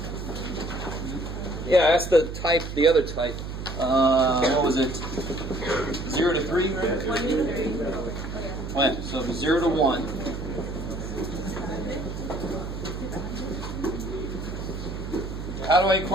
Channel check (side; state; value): right; noise; hum, 7 dB below the sound